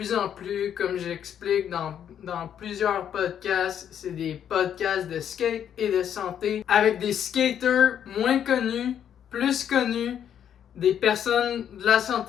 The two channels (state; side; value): quieter; right; 9.2 dB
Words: en plus, comme j'explique dans plusieurs podcasts, c'est des podcasts de skate et de santé avec des skaters moins connus, plus connus, des personnes de la